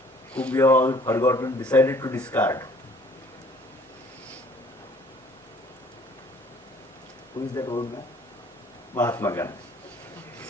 whom we have all forgotten, decided to discard. Who is that old man? Mahatma Gandhi.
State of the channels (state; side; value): normal; both; correlation 0.56